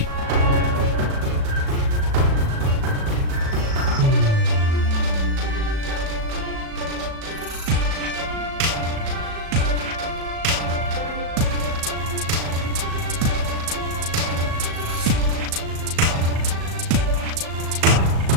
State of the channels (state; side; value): late; left; 37 ms